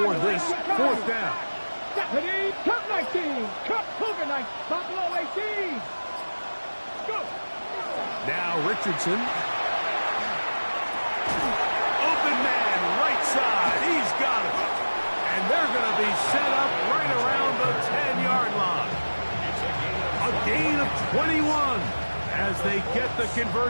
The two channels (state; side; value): inverted; both; correlation -1.00